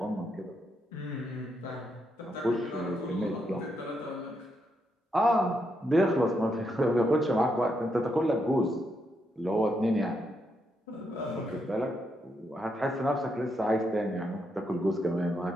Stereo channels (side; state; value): both; normal; correlation 0.80